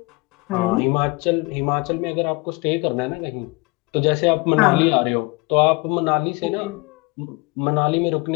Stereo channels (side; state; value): right; quieter; 25.7 dB